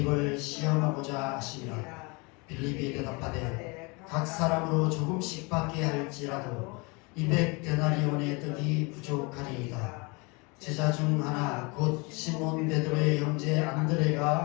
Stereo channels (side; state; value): right; quieter; 28.8 dB